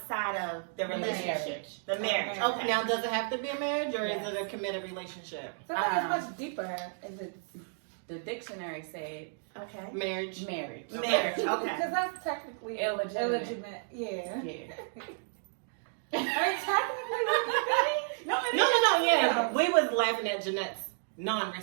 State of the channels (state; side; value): silent; left; digital silence